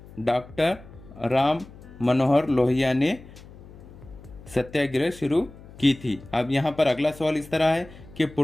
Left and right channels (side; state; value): left; noise; hum, 19 dB below the sound